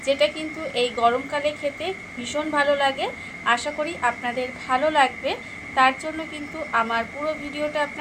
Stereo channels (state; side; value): identical; both; correlation 1.00